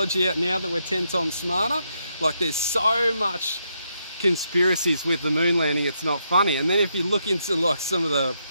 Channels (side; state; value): both; inverted; correlation -0.79